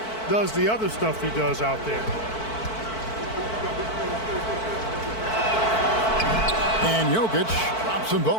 does the other stuff he does out there. And Jokic drops them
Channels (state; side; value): late; right; 4.5 ms